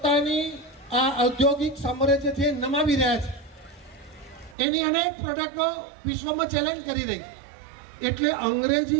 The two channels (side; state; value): left; drops out; at 4.5 s